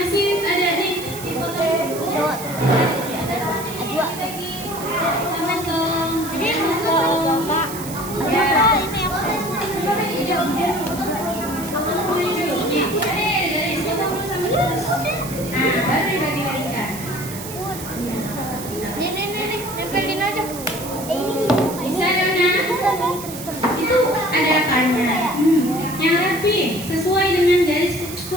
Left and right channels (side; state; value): right; noise; hiss, 11 dB below the sound